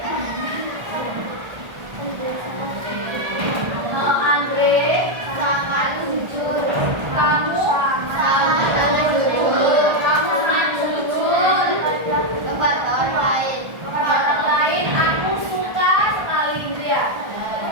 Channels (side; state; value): left; late; 1.4 ms